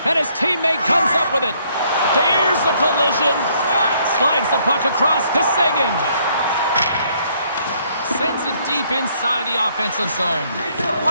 And his teammate comes up with it. There's a collision. Slides the puck across to Sagan. Sends it deep inside the offensive zone.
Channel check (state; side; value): inverted; both; correlation -0.67